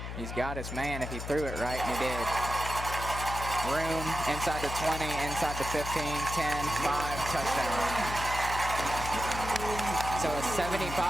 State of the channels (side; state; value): left; noise; hum, 7 dB below the sound